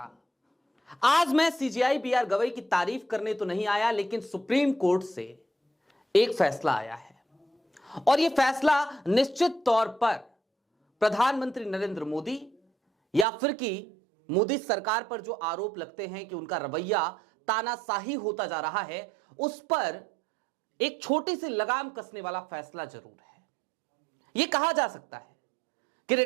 आज मैं सीजेआई बीआर गवई की तारीफ करने तो नहीं आया, लेकिन सुप्रीम कोर्ट से एक फैसला आया है और यह फैसला निश्चित तौर पर प्रधानमंत्री नरेंद्र मोदी या फिर कि मोदी सरकार पर जो आरोप लगते हैं कि उनका रवैया तानाशाही होता जा रहा है, उस पर एक छोटी सी लगाम कसने वाला फैसला जरूर है। यह कहा जा सकता है कि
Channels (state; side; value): drops out; left; at 13.2 s